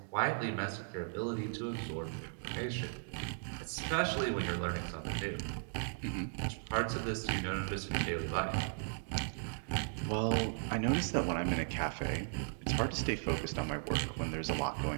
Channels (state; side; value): silent; left; digital silence